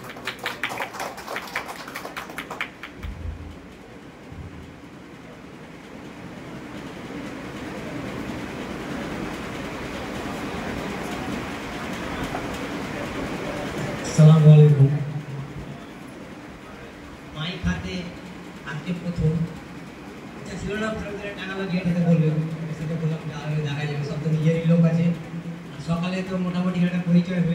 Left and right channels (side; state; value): both; identical; correlation 1.00